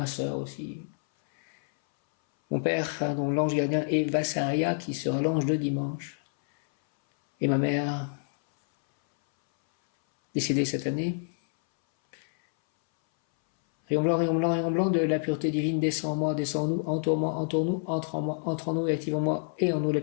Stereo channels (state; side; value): silent; right; 60 dB below the other